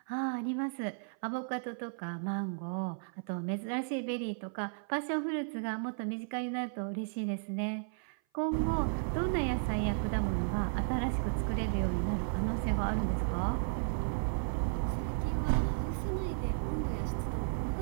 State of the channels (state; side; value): silent; left; 55 dB below the other